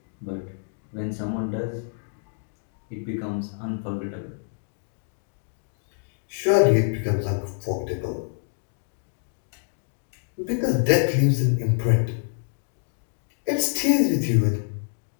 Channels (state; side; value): silent; right; digital silence